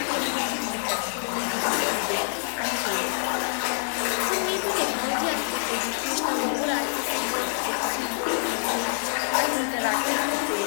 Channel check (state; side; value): silent; right; digital silence